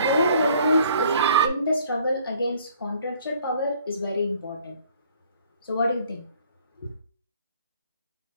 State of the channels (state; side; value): inverted; both; correlation -0.58